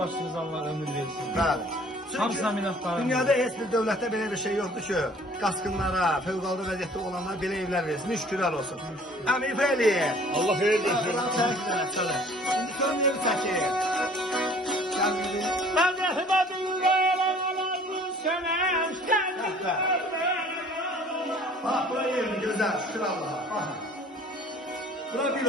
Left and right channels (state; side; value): normal; both; correlation 0.52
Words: Allah ömür versin. Bəli. Hamısına minnətdarım. Dünyada heç bir dövlətdə belə bir şey yoxdur ki, qaçqınlara, fövqəladə vəziyyətdə olanlara belə evlər versin. Şükürlər olsun. Əmin Fəliyev. Allah xeyir versin. İndi görməyib çəkir. Mən rəhmətin qayalalarını sənə Bax, bura yerin gözəl, şükür Allaha. Baxın. Bura bir